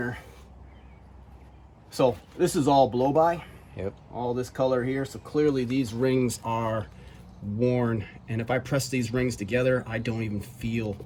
So this is all blow-by. Yep. All this color here. So clearly these rings are worn. And if I press these rings together, I don't even feel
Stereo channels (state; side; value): identical; both; correlation 1.00